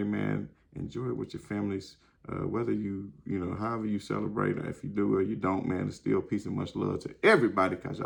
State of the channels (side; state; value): both; identical; correlation 1.00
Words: man, enjoy it with your families. Whether you, however you celebrate, or if you do or you don't, man, it's still peace and much love to everybody, because